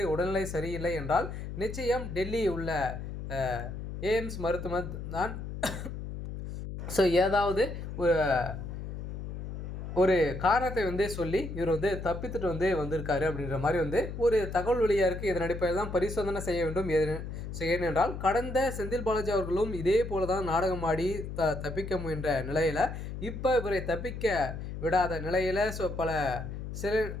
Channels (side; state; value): left; noise; hum, 7 dB below the sound